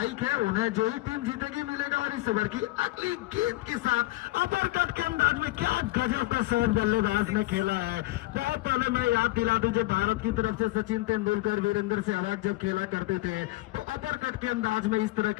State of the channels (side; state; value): right; quieter; 19.3 dB